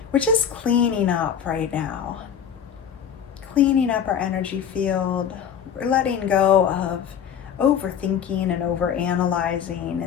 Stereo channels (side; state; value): right; quieter; 8.2 dB